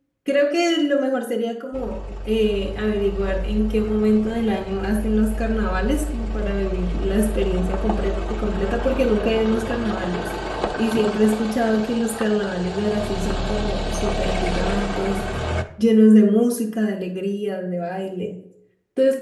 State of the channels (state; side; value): identical; both; correlation 1.00